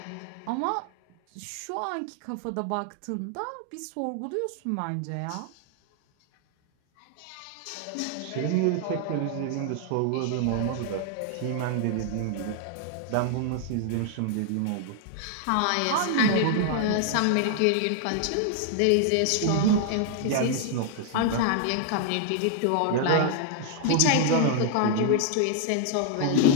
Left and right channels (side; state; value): both; different; correlation 0.00